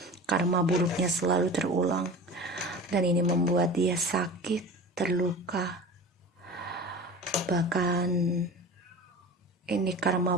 Karma buruknya selalu terulang. Dan ini membuat dia sakit, terluka. Bahkan ini karma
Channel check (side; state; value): both; normal; correlation 0.34